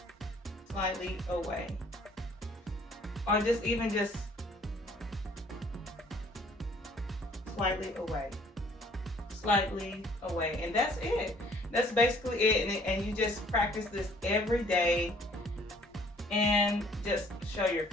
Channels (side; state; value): both; normal; correlation 0.58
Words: Slightly away. Or just slightly away. Slightly away. And that's it. That's basically it. And you just practice this every day and just show your